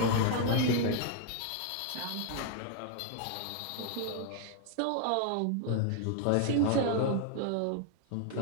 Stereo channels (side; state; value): both; different; correlation 0.00